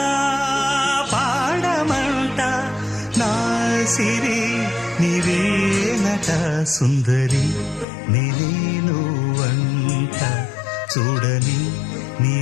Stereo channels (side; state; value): right; drops out; at 7.9 s